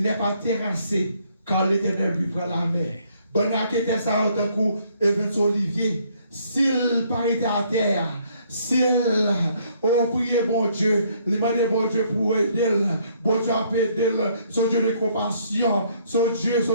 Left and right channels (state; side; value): inverted; both; correlation -0.66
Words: n'est pas terrassé, car l'Éternel lui prend la main. Bonne raquette ça d'un coup, Evans Olivier. S'il paraît à terre, s'il prié bon Dieu, il m'a dit bon Dieu pour aider, bon Dieu a aider, son Dieu de compassion, son Dieu